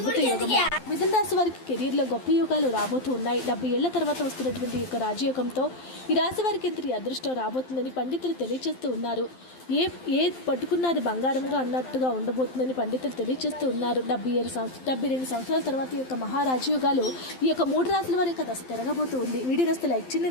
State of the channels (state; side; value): late; right; 12 ms